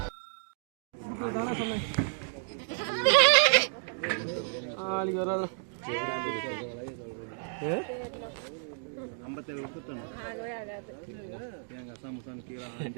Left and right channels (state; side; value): silent; left; digital silence